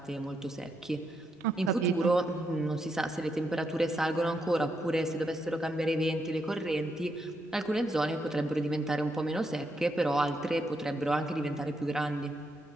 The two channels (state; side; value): normal; both; correlation 0.80